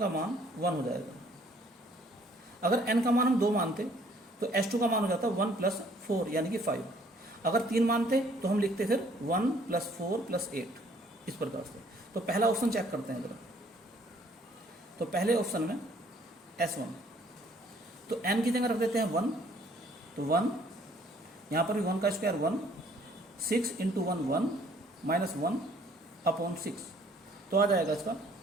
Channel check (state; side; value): normal; both; correlation 0.61